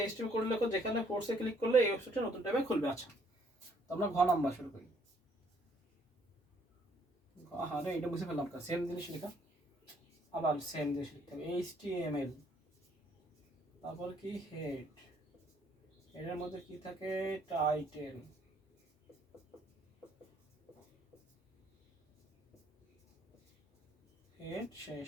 এইচটিএমএল কোড লেখো, যেখানে ফোর্সে ক্লিক করলে এই ওয়েবসাইটে নতুন ট্যাবে খুলবে। আচ্ছা, তো আমরা ঘ নাম্বার শুরু করি। হ্যাঁ রে, এটা বুঝে ফেললাম, সেম জিনিস লেখা, আবার সেম জিনিস লিখতে হবে, এইচটিএমএল, তারপর কি হেড, এর মধ্যে কি থাকে, টাইটেল, হেড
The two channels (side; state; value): both; normal; correlation 0.66